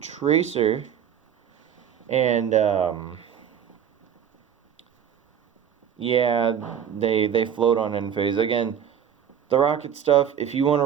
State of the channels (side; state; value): left; quieter; 8.6 dB